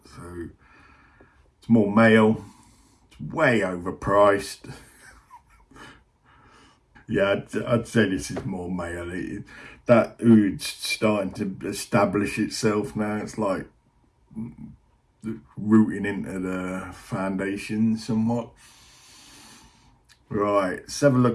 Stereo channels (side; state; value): both; identical; correlation 1.00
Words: So it's more male. It's way overpriced. Yeah, I'd say this is more male. That Oud's starting to establish itself now. It's like rooting into the foundation somewhat. Right, let's have a